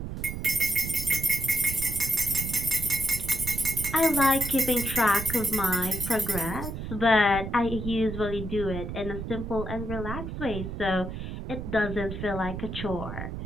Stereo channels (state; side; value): noise; right; rumble, 7 dB below the sound